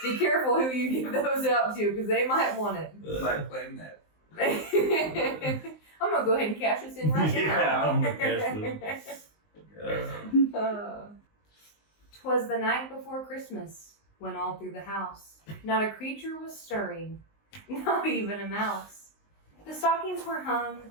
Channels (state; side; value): late; right; 19 ms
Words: be careful who you give those out to because they might want it. Like playing that. I'm gonna go ahead and cash this in right Yeah, now. I'm gonna cash this. 'Twas the night before Christmas, when all through the house not a creature was stirring, not even a mouse. The stockings were hung,